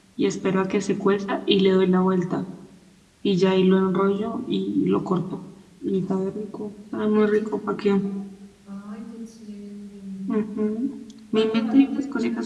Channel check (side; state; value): both; identical; correlation 1.00